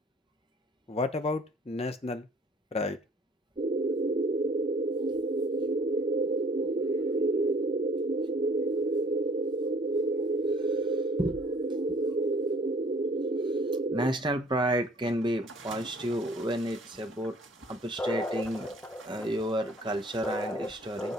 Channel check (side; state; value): both; normal; correlation 0.55